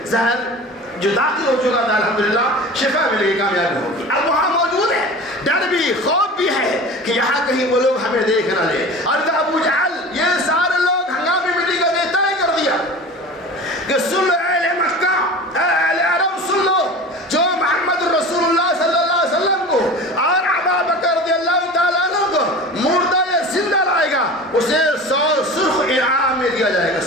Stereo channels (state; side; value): normal; both; correlation 0.36